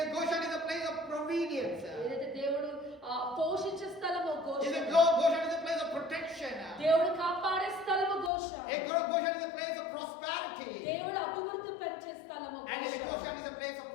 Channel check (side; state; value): right; drops out; at 8.3 s